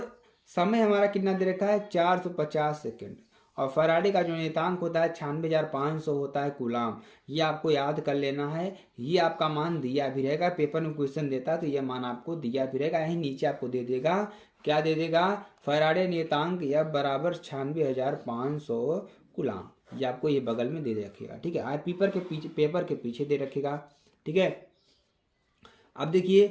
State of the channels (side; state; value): both; identical; correlation 1.00